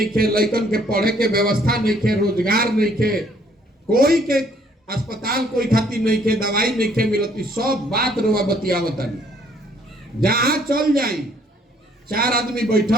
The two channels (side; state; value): both; normal; correlation 0.63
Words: खे, लइकन के पढ़े के व्यवस्था नहीं खे, रोजगार नहीं खे, कोई के अस्पताल कोई खाती नहीं खे, दवाई नहीं खे मिलती, सब बात रुआ बतियावतनी। जहां चल जाई 4 आदमी